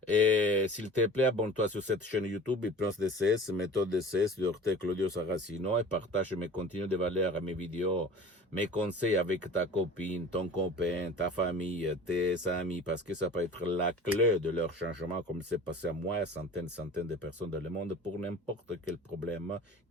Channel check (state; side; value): normal; both; correlation 0.42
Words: Et s'il te plaît, abonne-toi sur cette chaîne YouTube, Hypnose DCS, méthode DCS de Dr. Claudio Saracino et partage mes contenus de valeur, mes vidéos, mes conseils avec ta copine, ton copain, ta famille, tes amis, parce que ça peut être la clé de leur changement, comme c'est passé à moi, centaines de personnes dans le monde, pour n'importe quel problème